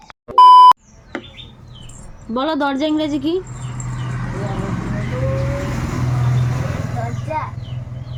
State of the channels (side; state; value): both; identical; correlation 1.00